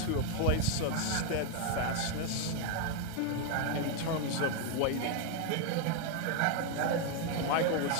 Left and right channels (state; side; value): different; both; correlation 0.01